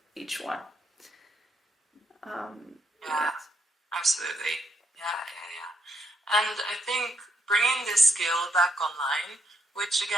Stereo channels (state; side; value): normal; both; correlation 0.77